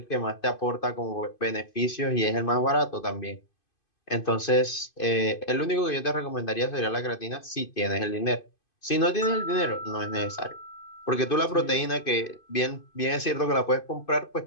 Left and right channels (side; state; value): right; late; 2.5 ms